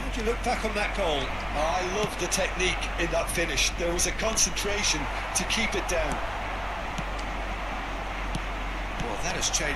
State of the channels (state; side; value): identical; both; correlation 1.00